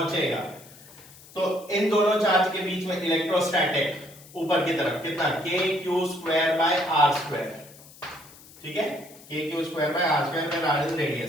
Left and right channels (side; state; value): left; noise; hiss, 21 dB below the sound